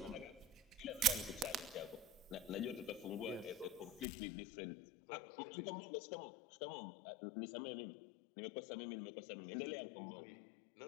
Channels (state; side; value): drops out; right; at 4.0 s